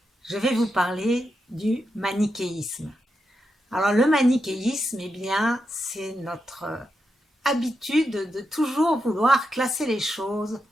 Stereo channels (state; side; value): normal; both; correlation 0.86